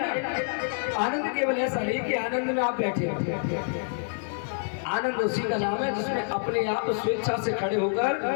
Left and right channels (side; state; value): right; silent; digital silence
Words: आनंद केवल ऐसा नहीं कि आनंद में आप बैठे हो, आनंद उसी का नाम है जिसमें अपने आप स्वेच्छा से खड़े